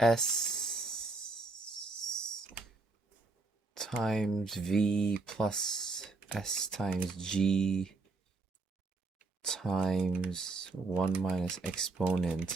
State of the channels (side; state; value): left; quieter; 3.6 dB